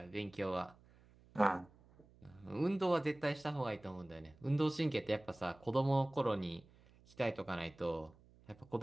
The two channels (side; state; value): right; noise; hum, 26 dB below the sound